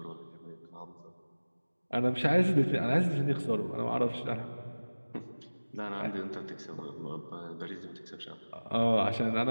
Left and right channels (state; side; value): inverted; both; correlation -1.00